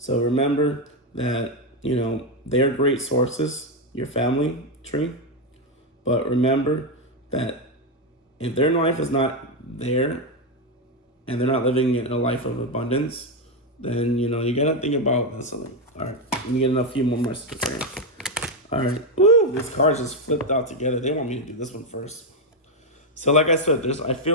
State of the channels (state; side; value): normal; both; correlation 0.05